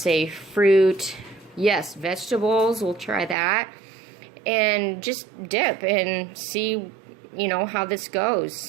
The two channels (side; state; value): left; drops out; at 3.4 s